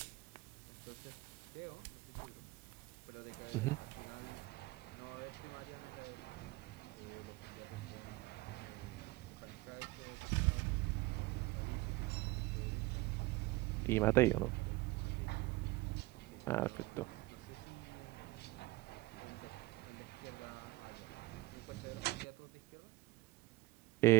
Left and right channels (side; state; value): left; quieter; 19.9 dB